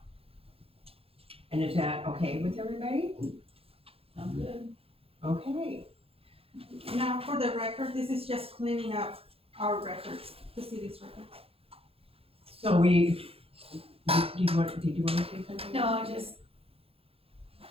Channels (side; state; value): left; late; 0.28 ms